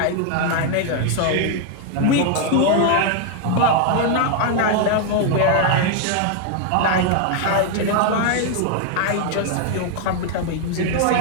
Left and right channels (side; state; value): both; different; correlation 0.00